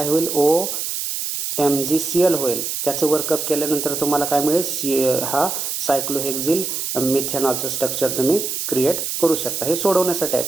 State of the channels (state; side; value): noise; right; hiss, 3 dB below the sound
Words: होईल, OMgCl होईल. त्याचं वर्कअप केल्यानंतर तुम्हाला काय मिळेल, हा सायक्लोहेक्झिल मिथेनॉलचं स्ट्रक्चर तुम्ही क्रिएट करू शकता. हे सोडवण्यासाठी आहे,